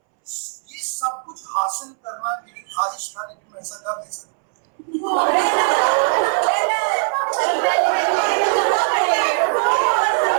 ये सब कुछ हासिल करना मेरी ख्वाहिश था, लेकिन मैं ऐसा कर नहीं सकता.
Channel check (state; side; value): silent; left; 64 dB below the other